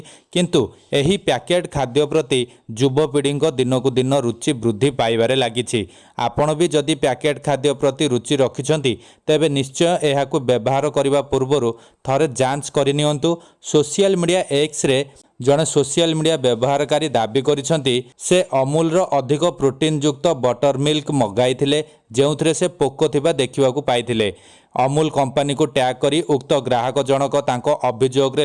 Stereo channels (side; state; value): both; identical; correlation 1.00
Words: किंतु एही पैकेट खाद्य प्रति युवपीढ़ी दिन को दिन रुचि वृद्धि पाइबारे लागिछि। आपण भी जदि पैकेट खाद्य प्रति रुचि रखिछंती तेबे निश्चय एहाकु व्यवहार करिबा पूर्वरु थरे जांच करिनियंतु। सोशल मीडिया एक्स रे जड़े सोशल मीडिया व्यवहारकारी दाबी करिसेंती से अमूल अधिक प्रोटीन युक्त बटर मिल्क मगाई जो से पोको थिबा देखिबाकू पाइथिले। अमूल कंपनी को टैग करी उक्त ग्राहक जनक तांको अभियोग रे